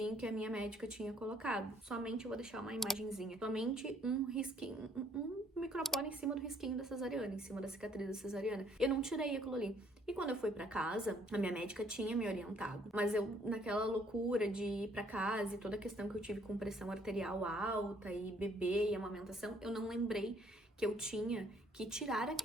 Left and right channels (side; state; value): both; normal; correlation 0.64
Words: que a minha médica tinha colocado. Somente, eu vou deixar uma imagenzinha, somente um risquinho, um micropore em cima do risquinho da cesariana, em cima da cicatriz da cesariana. Eu não tirei aquilo ali. E quando eu fui pra casa, a minha médica tinha me orientado. Mas eu, naquela loucura de ir pra casa e toda a questão que eu tive com pressão arterial alta e bebê e amamentação, eu não lembrei que eu tinha que tirar